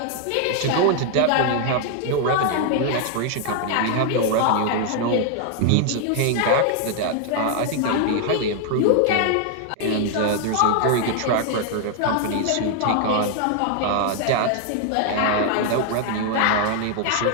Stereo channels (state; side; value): different; both; correlation 0.00